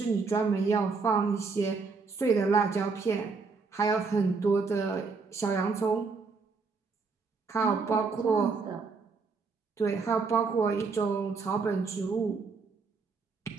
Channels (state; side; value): quieter; left; 4.6 dB